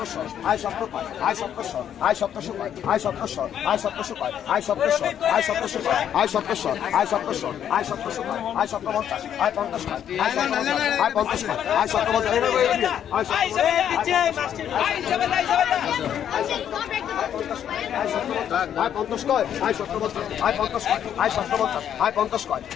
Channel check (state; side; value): quieter; right; 9.6 dB